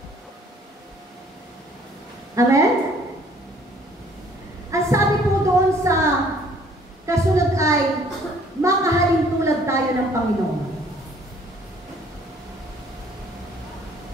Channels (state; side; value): normal; both; correlation 0.58